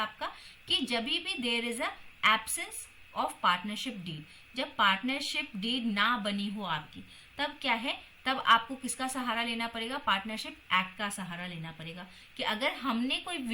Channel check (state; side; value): identical; both; correlation 1.00